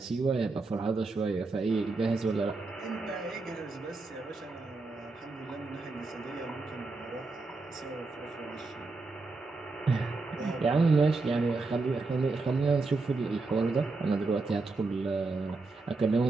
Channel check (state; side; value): quieter; left; 3.7 dB